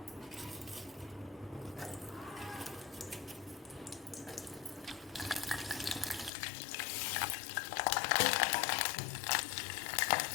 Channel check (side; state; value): right; drops out; at 6.3 s